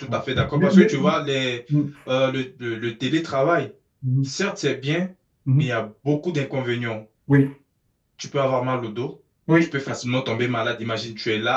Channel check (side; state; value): both; identical; correlation 1.00